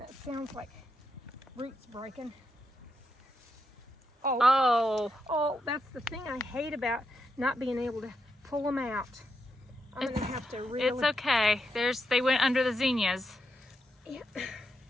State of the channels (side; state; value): both; normal; correlation 0.83